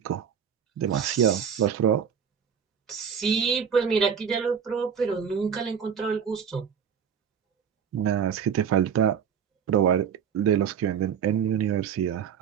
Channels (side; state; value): left; quieter; 7.6 dB